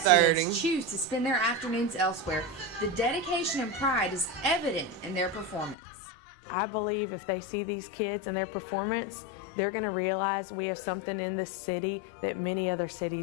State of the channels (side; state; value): right; drops out; at 5.8 s